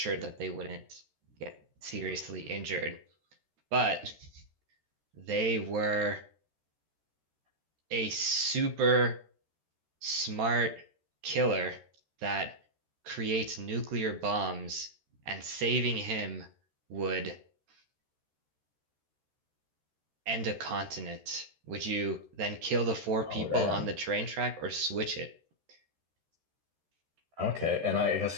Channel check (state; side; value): late; left; 13 ms